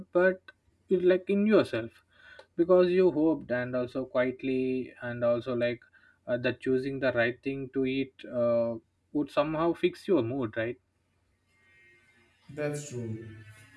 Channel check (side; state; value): both; identical; correlation 1.00